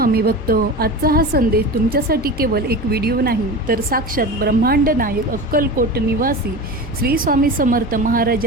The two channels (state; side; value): normal; both; correlation 0.29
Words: भक्त. आजचा हा संदेश तुमच्यासाठी केवळ एक व्हिडिओ नाही तर साक्षात ब्रह्मांड नायक अक्कलकोट निवासी श्री स्वामी समर्थ